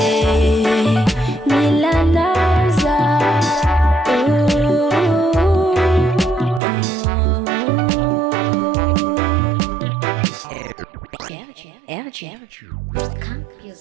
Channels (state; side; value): drops out; left; at 6.6 s